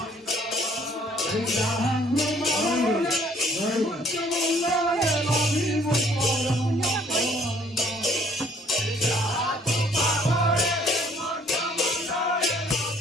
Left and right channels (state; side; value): normal; both; correlation 0.60